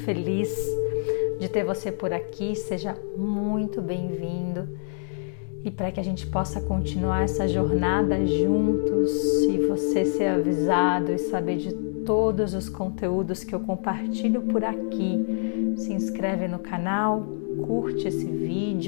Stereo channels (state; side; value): silent; right; digital silence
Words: de ter você por aqui. Seja muito bem-vindo e para que a gente possa continuar essa jornada juntos e você ser avisado e saber de todos os conteúdos que eu compartilho por aqui. Se inscreve no canal, curte esse